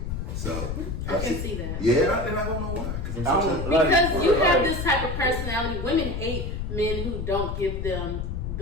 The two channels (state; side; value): noise; left; rumble, 4 dB below the sound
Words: So I can see that. Yeah, and I don't know why. Because you have this type of personality. Women hate men who don't give them